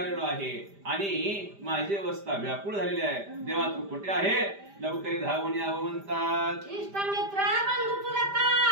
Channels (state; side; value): late; left; 5.0 ms